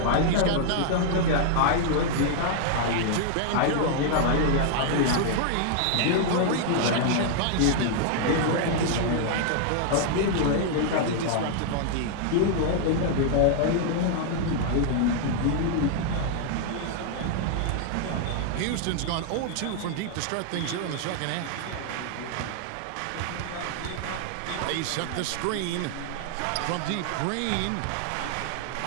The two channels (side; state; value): both; different; correlation 0.00